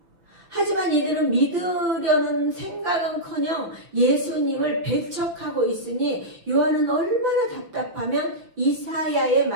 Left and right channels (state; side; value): late; left; 5.9 ms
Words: 하지만 이들은 믿으려는 생각은커녕 예수님을 배척하고 있으니 요한은 얼마나 답답하면 이사야의